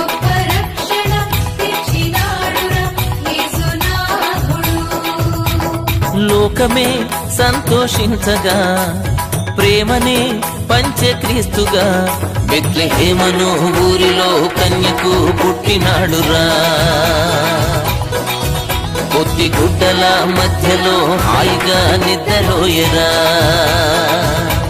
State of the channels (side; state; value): both; identical; correlation 1.00